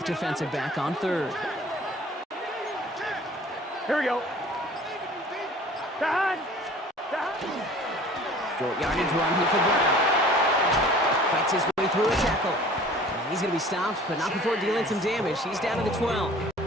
defensive back on 3rd. Here we go. Dad. Short yardage run here for Brown. Fights his way through a tackle. And he's going to be stopped, but not before dealing some damage. He's down to the 12.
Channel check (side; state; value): both; normal; correlation 0.48